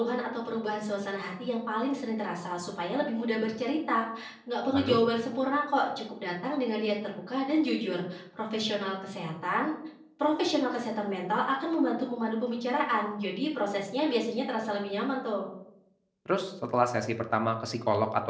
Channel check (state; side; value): identical; both; correlation 1.00